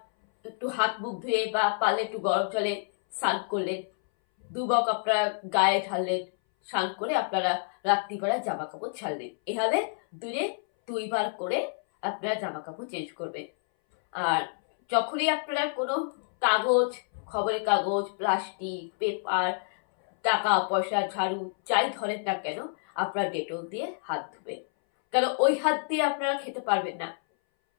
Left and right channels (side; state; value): right; silent; 59 dB below the other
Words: একটু হাত মুখ ধুয়ে বা পারলে একটু গরম জলে স্নান করলেন, 2 মগ আপনারা গায়ে ঢাললেন, স্নান করে আপনারা রাত্রিবেলায় জামা কাপড় ছাড়লেন। এভাবে দিনে 2 বার করে আপনারা জামা কাপড় চেঞ্জ করবেন। আর যখনই আপনারা কোনো কাগজ, খবরের কাগজ, প্লাস্টিক, পেপার, টাকা পয়সা, ঝাড়ু যাই ধরেন না কেন, আপনারা ডেটল দিয়ে হাত ধুবেন। কারণ ওই হাত দিয়ে আপনারা খেতে পারবেন না,